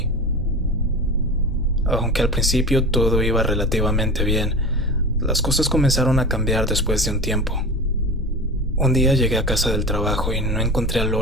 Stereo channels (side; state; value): both; normal; correlation 0.31